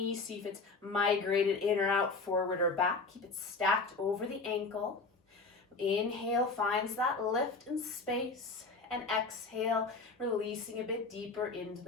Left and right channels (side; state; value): right; quieter; 3.9 dB